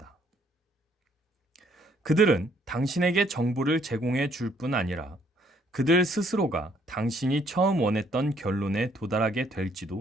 그들은 당신에게 정보를 제공해 줄 뿐 아니라 그들 스스로가 당신이 처음 원했던 결론에 도달하게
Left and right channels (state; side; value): normal; both; correlation 0.66